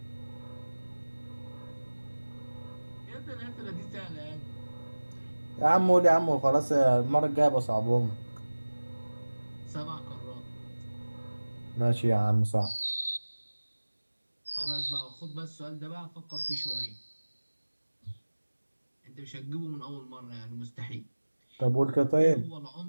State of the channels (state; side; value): inverted; both; correlation -1.00